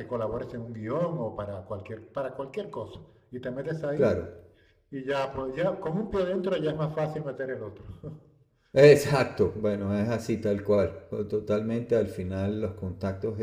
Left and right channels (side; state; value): both; identical; correlation 1.00